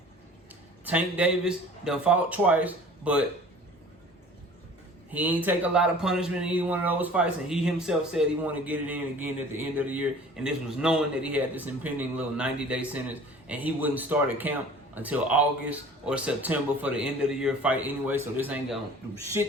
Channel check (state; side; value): normal; both; correlation 0.46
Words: Tank Davis done fought twice, but he ain't take a lot of punishment in either one of those fights, and he himself said he wanted to get it in again at the end of the year, and this was knowing that he had this impending little 90-day sentence, and he wouldn't start a camp until August or September for the end of the year fight anyway, so this ain't gonna do